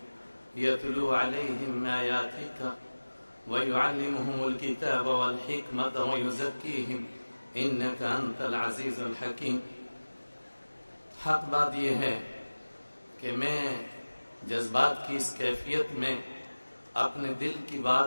یتلو علیہم آیاتک ویعلمہم الکتاب والحکمت ویزکیہم انک انت العزیز الحکیم۔ حق بات یہ ہے کہ میں جذبات کی اس کیفیت میں اپنے دل کی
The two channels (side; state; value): both; inverted; correlation -1.00